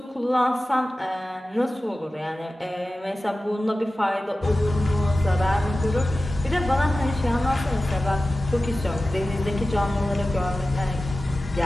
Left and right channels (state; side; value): normal; both; correlation 0.95